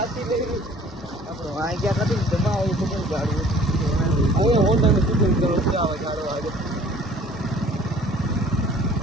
લઈ આપણો આ ગયા નથી જમા હોય તો કેવું ગાડવું હવે હોન્ડા ને સુધર કરો આવે ગાડો આગળ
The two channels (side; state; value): both; normal; correlation 0.52